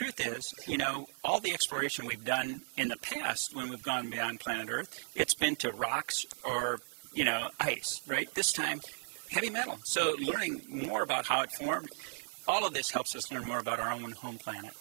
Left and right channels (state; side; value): silent; left; digital silence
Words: is, you know, all the exploration we've done in the past when we've gone beyond planet Earth, it's been to rocks or, you know, ice, right? This time, heavy metal. So learning more about how it formed, all of this helps us learn more about our own home planet.